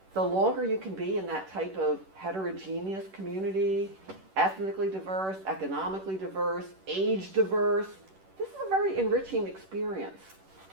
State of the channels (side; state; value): left; late; 11 ms